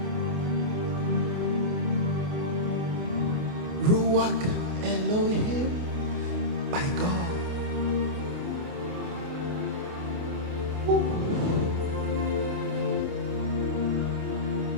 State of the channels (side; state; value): left; late; 28 ms